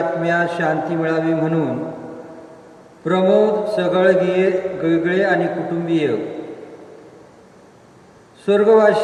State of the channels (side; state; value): both; identical; correlation 1.00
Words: शांती मिळावी म्हणून प्रमोद सगळगिळे आणि कुटुंबीय,